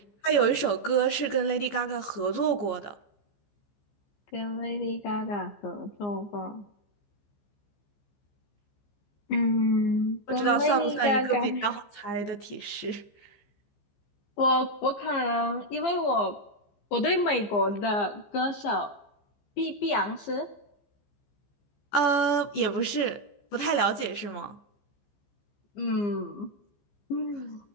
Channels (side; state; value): right; late; 15 ms